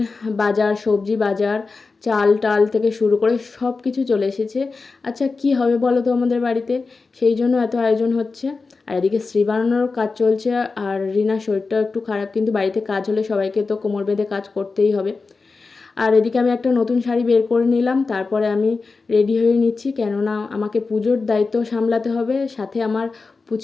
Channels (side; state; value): right; quieter; 4.2 dB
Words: বাজার, সবজি বাজার, চাল টাল থেকে শুরু করে সব কিছু চলে এসেছে। আচ্ছা কি হবে বলো তো আমাদের বাড়িতে, সেই জন্য এত আয়োজন হচ্ছে। আর এদিকে শ্রী বানানোর কাজ চলছে, আর রিনার শরীরটাও একটু খারাপ, কিন্তু বাড়িতে কাজ হলে সবাইকে তো কোমর বেঁধে কাজ করতেই হবে। আর এদিকে আমি একটা নতুন শাড়ি বের করে নিলাম, তারপরে আমি রেডি হয়ে নিচ্ছি, কেননা আমাকে পুজোর দায়িত্ব সামলাতে হবে, সাথে আমার